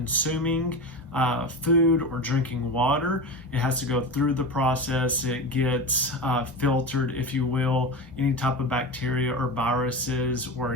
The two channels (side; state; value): both; normal; correlation 0.24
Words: food or drinking water, it has to go through the process. It gets filtered, if you will. Any type of bacteria or viruses